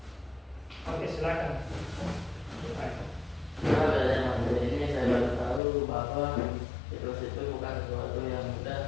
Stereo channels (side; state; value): right; drops out; at 5.6 s